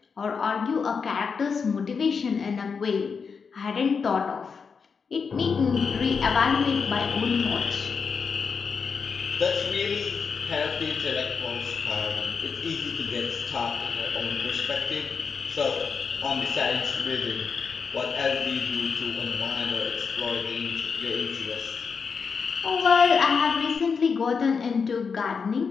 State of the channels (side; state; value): right; quieter; 5.7 dB